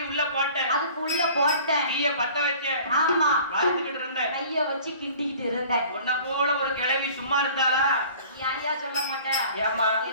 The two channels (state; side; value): inverted; both; correlation -0.47